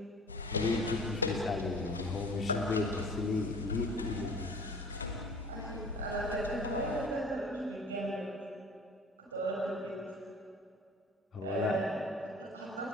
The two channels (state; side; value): normal; both; correlation 0.45